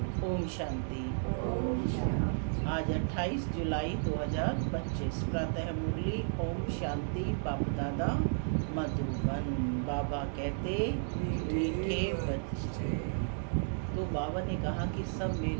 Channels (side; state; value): left; silent; digital silence